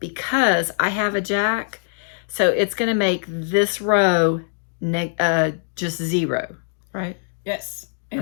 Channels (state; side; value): silent; right; digital silence